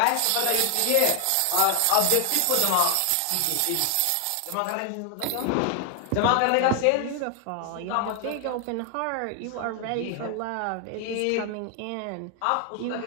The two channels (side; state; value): both; different; correlation 0.00